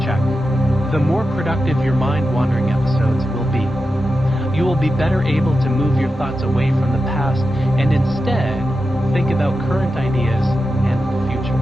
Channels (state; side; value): normal; both; correlation 0.90